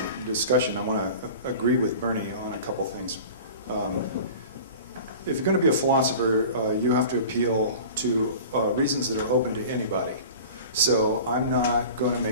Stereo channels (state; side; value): inverted; both; correlation -0.39